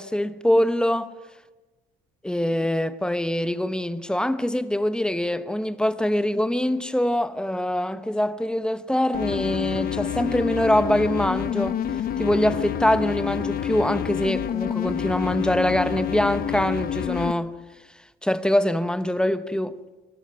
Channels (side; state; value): both; normal; correlation 0.88